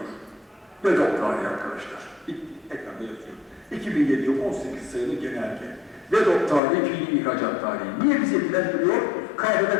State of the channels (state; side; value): drops out; right; at 6.6 s